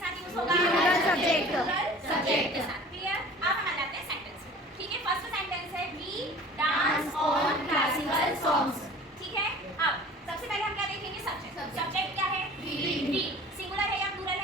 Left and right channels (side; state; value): both; normal; correlation 0.44